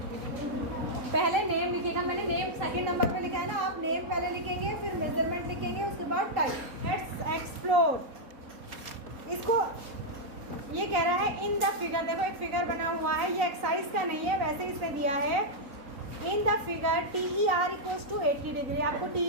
पहले नेम लिखिएगा। मैंने नेम सेकंड नंबर पे लिखा है ना, आप नेम पहले लिखेंगे, फिर मेजरमेंट लिखेंगे, उसके बाद टाइप। Let's explore. इसको ये कह रहा है इन द फिगर, देखो एक फिगर बना हुआ है, ये एक्सरसाइज का नहीं है, वैसे इसने दिया है। In the figure TER equals to 80 degree. आपको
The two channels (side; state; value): left; late; 3.9 ms